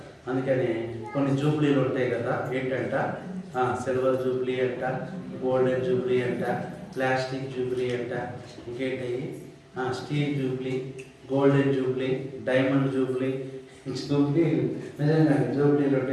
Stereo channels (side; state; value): both; identical; correlation 1.00